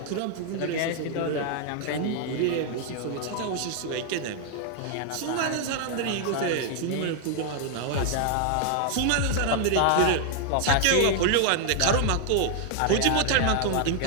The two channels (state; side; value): different; both; correlation 0.00